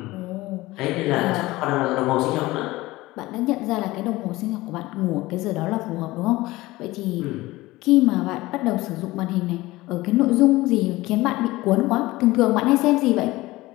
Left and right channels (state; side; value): quieter; right; 19.2 dB